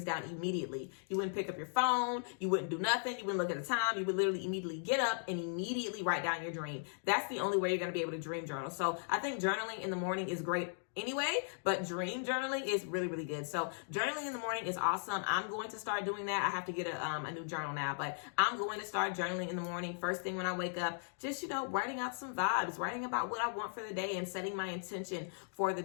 down immediately. You wouldn't pick up your phone. You wouldn't do nothing. You wouldn't look at the time. You would literally immediately get up and immediately write down your dream. That's the only way you're going to be able to dream journal. So I think journaling in the morning is great anyway, but dream journaling is really, really good. So journaling in the morning is awesome. I'm going to start doing that. I have to get a new journal now, but I'm going to start journaling in the morning. First thing when I wake up, just, you know, writing out some vibes, writing about what I want for the day and setting my intention for the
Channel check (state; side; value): silent; right; digital silence